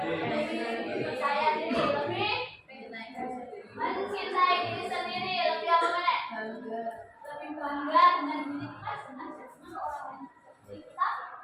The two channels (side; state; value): both; identical; correlation 1.00